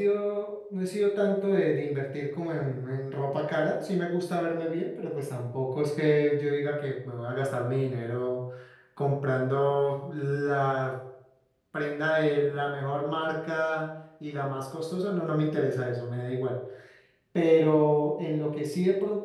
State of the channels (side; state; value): both; identical; correlation 1.00